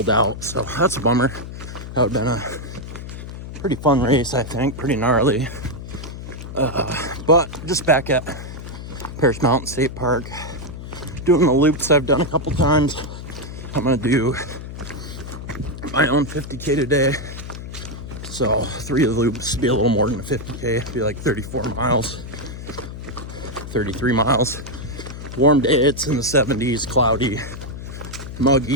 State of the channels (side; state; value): left; noise; hum, 10 dB below the sound